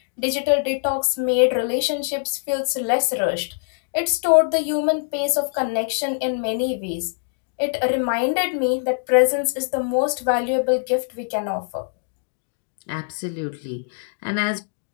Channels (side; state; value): right; silent; digital silence